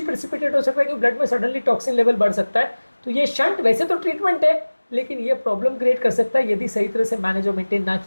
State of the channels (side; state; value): both; inverted; correlation -1.00